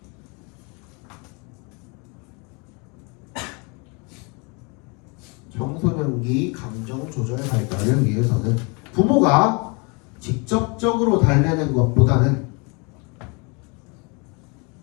청소년기 감정 조절 발달을 위해서는 부모가 직접적으로 달래는 것보다는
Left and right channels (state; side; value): quieter; right; 31.3 dB